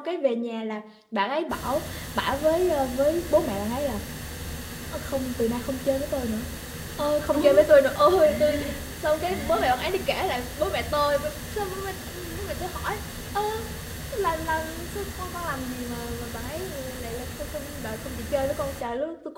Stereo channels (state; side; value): identical; both; correlation 1.00